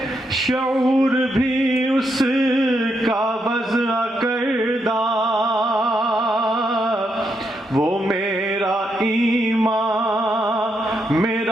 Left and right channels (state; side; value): normal; both; correlation 0.80